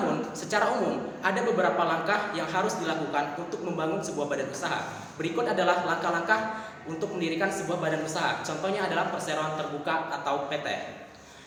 secara umum, ada beberapa langkah yang harus dilakukan untuk membangun sebuah badan usaha. Berikut adalah langkah-langkah untuk mendirikan sebuah badan usaha. Contohnya adalah perseroan terbuka atau PT.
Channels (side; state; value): both; identical; correlation 1.00